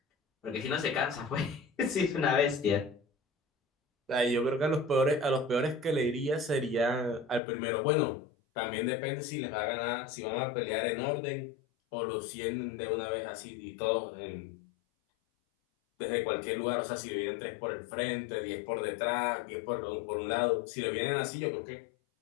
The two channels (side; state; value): right; drops out; at 7.4 s